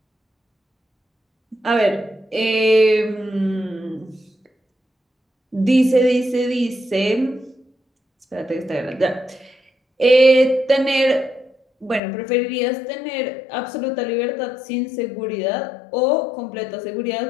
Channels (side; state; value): right; drops out; at 12.0 s